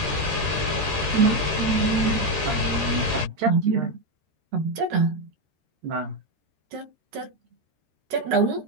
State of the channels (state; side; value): late; left; 13 ms